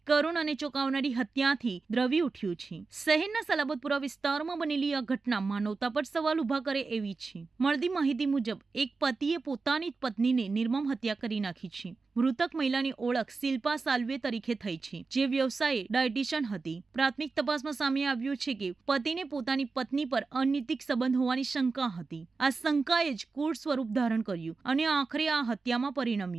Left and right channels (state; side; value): quieter; left; 4.2 dB